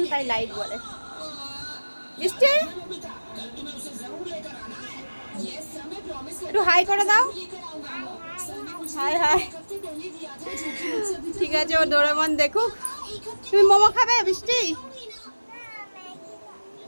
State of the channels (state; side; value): inverted; both; correlation -1.00